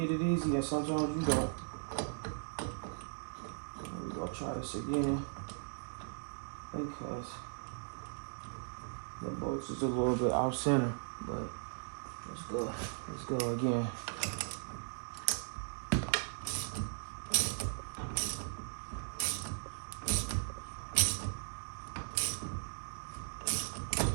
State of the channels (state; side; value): silent; left; digital silence